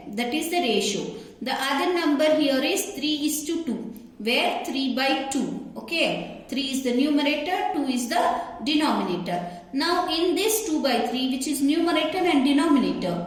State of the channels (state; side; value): identical; both; correlation 1.00